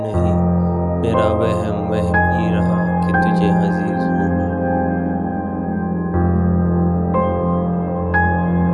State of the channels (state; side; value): identical; both; correlation 1.00